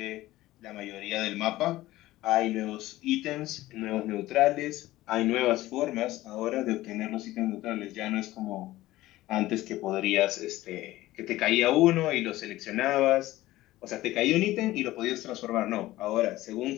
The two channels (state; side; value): quieter; right; 16.7 dB